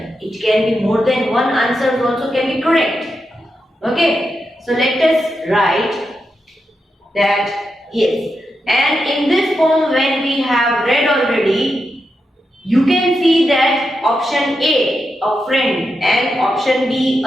it can be more than one answer also can be correct. Okay. So let us write that yes. And in this poem when we have read already, you can see that option A, a friend, and option B,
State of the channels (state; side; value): normal; both; correlation 0.87